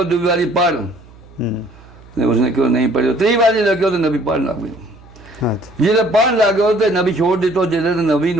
दूसरी बारी पढ़ उसने क्यों नहीं पढ़ी। 3 बारी लगे तो नबी पढ़ लग गयो। अच्छा जिसे पढ़ लग गयो तो नबी छोड़ दितो जिसे तो नबी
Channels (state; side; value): noise; right; hum, 23 dB below the sound